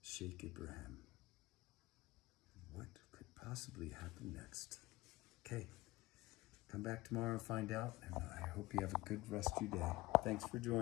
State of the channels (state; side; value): quieter; right; 19.6 dB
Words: Sheikh Ibrahim. What could possibly happen next? Okay, come back tomorrow and find out, and I hope you have a good rest of your day. Thanks for